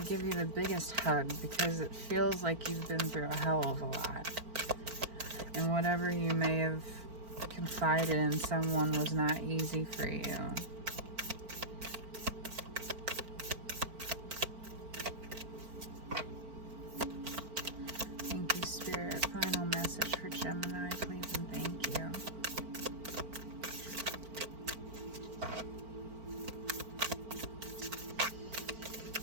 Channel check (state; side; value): late; left; 4.4 ms